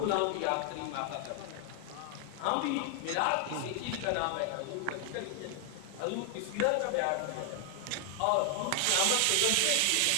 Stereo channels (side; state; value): both; different; correlation 0.00